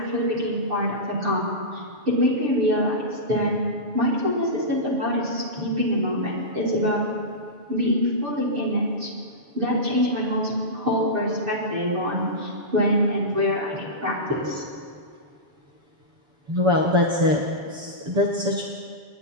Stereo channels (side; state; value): left; late; 7.0 ms